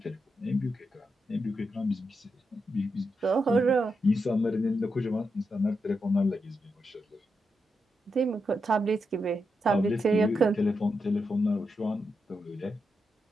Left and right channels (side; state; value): both; normal; correlation 0.85